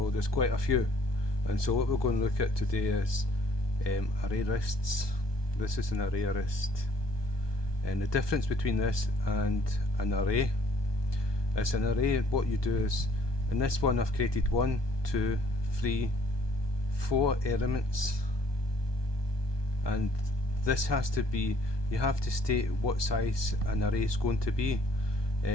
There's quite a few. And so what we're going to look at today is ArrayLists. This is an ArrayList, and the difference between this and an array is an array. What you do is, in this one I've created 1, 2, 3, 4 elements, and this has to be, you have to state what size an array is going to be,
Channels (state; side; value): late; right; 1.2 ms